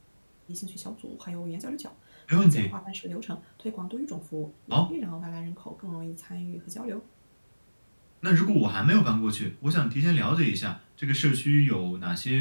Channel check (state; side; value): inverted; both; correlation -1.00